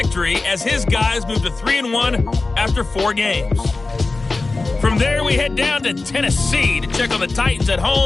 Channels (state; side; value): quieter; right; 3.6 dB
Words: as his guys moved to 3-1 after 4 games. From there, we head down to Tennessee to check on the Titans at